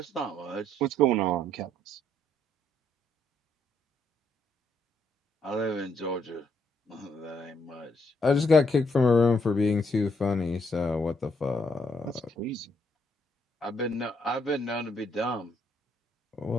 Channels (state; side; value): normal; both; correlation 0.72